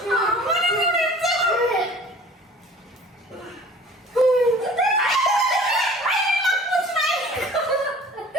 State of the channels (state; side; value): normal; both; correlation 0.46